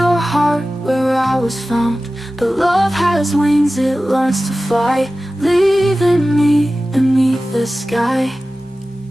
heart where I was found. But love has wings, it learns to fly, leaving me beneath the sky.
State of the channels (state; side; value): normal; both; correlation 0.96